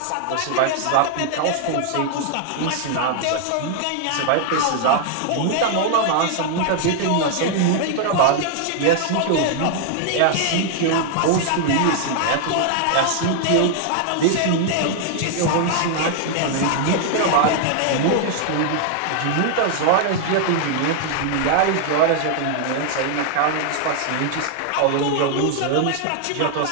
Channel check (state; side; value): different; both; correlation 0.00